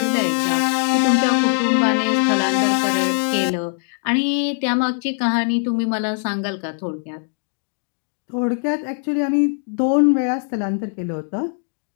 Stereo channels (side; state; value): right; silent; 56 dB below the other